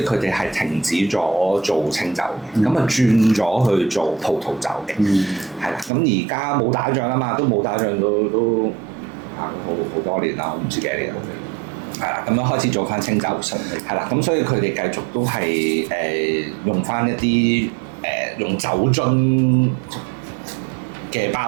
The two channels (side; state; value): left; drops out; at 5.9 s